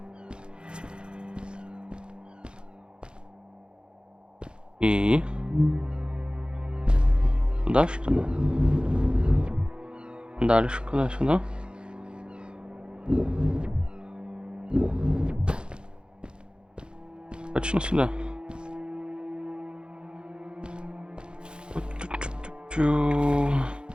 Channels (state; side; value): late; left; 0.051 ms